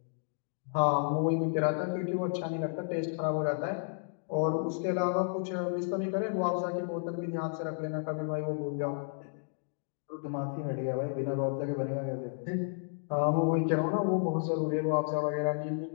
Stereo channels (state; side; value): silent; right; digital silence